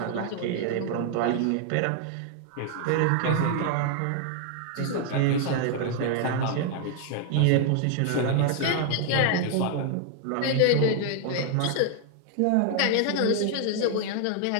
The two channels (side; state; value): both; different; correlation 0.00